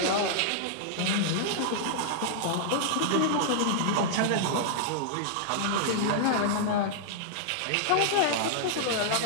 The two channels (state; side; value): different; both; correlation -0.01